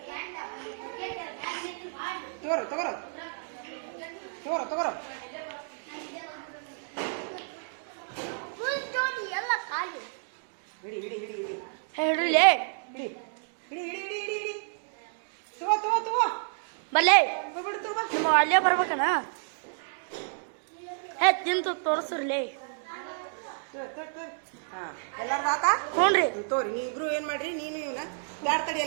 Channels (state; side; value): silent; left; digital silence